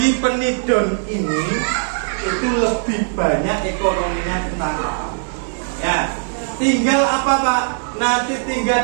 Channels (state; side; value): silent; left; digital silence